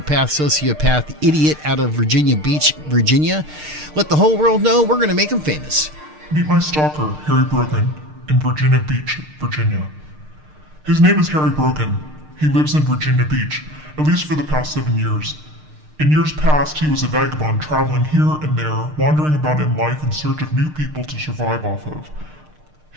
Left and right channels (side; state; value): left; late; 6.6 ms